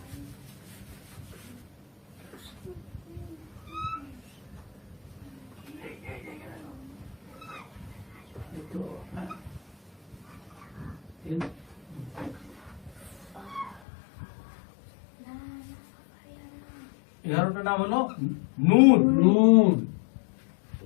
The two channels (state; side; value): drops out; right; at 13.8 s